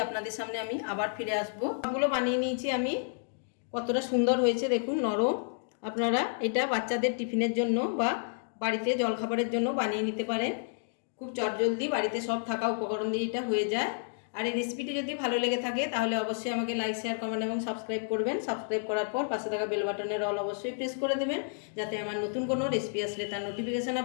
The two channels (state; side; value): silent; right; digital silence